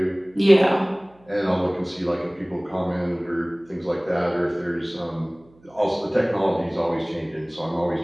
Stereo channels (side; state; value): right; noise; hum, 30 dB below the sound